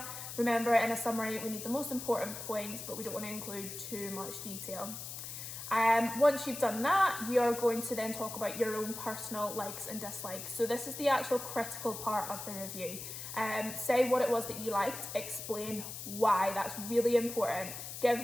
Remember, in a summary we need the most important points, but we don't want to include too much detail. Once you've done that, you're going to then talk about your own personal likes and dislikes. So this is the actual critical part of the review. Say what it was that you liked, explain why. That's really important. Give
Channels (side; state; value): left; noise; hiss, 9 dB below the sound